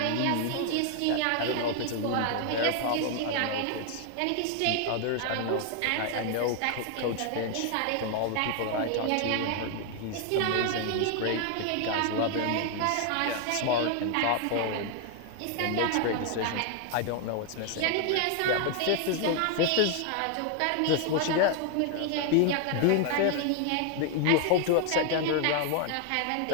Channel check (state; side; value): different; both; correlation 0.00